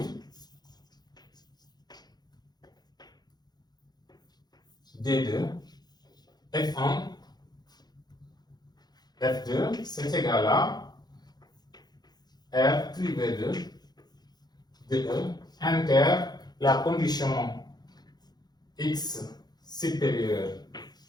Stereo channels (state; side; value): late; right; 0.20 ms